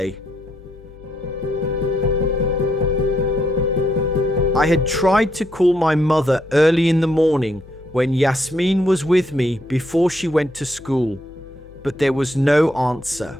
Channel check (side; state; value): left; noise; hum, 22 dB below the sound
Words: I had tried to call my mother early in the morning when Yasmin was with me before she went to school, but there was no answer.